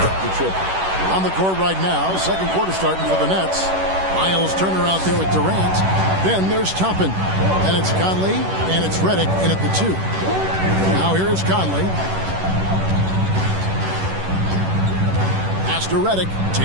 the triple. On the court right now, second quarter starting for the Nets. Miles Turner out there with Durant. Then there's Toppin. And it's Conley, and it's Redick in at the 2. Now here is Conley. Pass to Redick.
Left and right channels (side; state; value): left; late; 11 ms